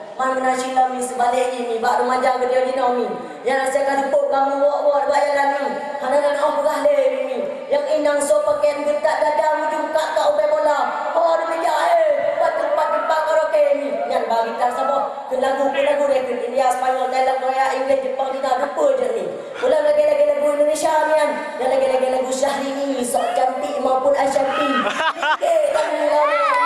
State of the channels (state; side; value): identical; both; correlation 1.00